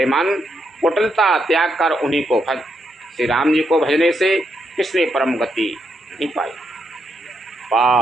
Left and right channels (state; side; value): normal; both; correlation 0.80